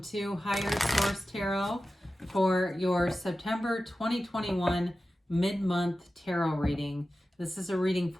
Higher Source Tarot for your September 2021 mid-month tarot reading. This is a reading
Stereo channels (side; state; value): both; normal; correlation 0.94